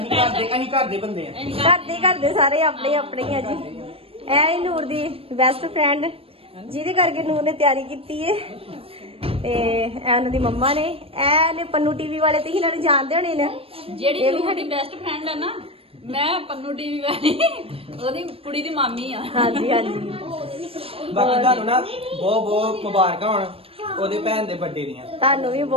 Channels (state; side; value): late; left; 0.28 ms